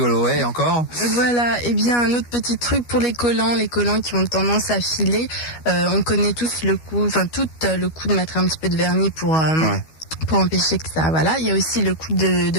Ouais, encore. Voilà, et bien un autre petit truc pour les collants qui ont tendance à filer. On connaît tous le coup, enfin tout le coup de mettre un petit peu de vernis pour empêcher que ça. Voilà, il y a aussi le coup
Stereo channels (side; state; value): right; late; 12 ms